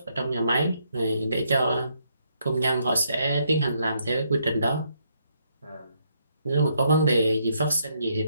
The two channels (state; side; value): inverted; both; correlation -0.74